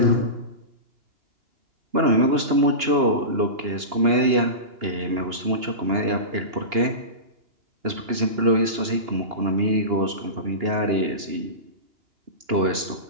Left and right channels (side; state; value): left; late; 2.9 ms